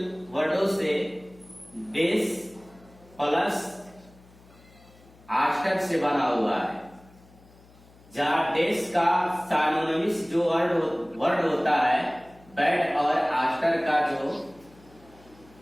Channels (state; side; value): noise; left; hum, 26 dB below the sound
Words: वर्डों से डेस प्लस आस्टर से बना हुआ है, जहां डेस का साइनोनिम्स जो वर्ड होता है बैड, और आस्टर का जो